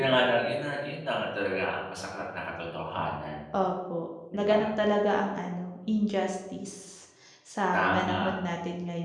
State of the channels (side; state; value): both; identical; correlation 1.00